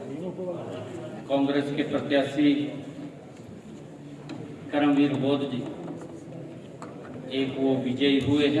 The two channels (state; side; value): identical; both; correlation 1.00